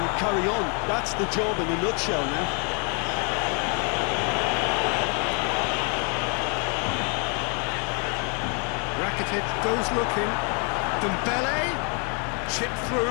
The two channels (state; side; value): quieter; right; 37.4 dB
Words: carry on. That's the job in a nutshell now. Rakitic goes looking. Dembele, chipped